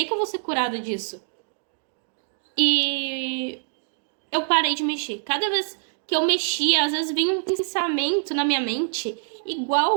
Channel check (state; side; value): silent; left; digital silence